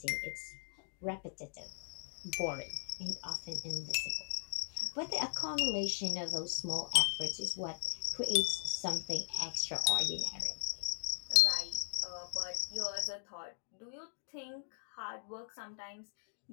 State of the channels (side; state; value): right; silent; digital silence